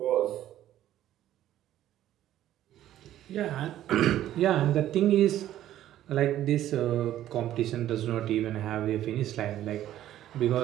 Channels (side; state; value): left; quieter; 12.7 dB